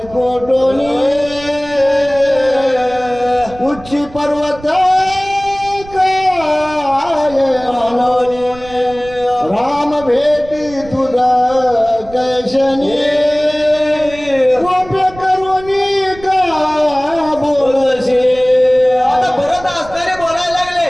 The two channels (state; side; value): noise; right; rumble, 18 dB below the sound